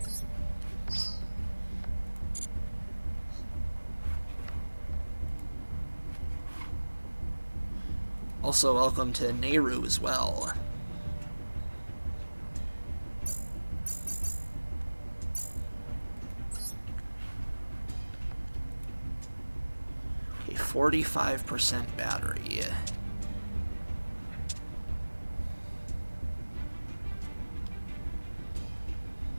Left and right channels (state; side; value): inverted; both; correlation -1.00